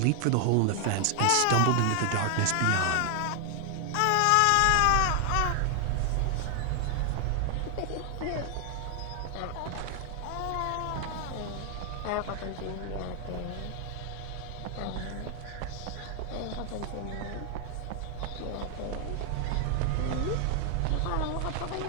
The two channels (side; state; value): both; different; correlation 0.00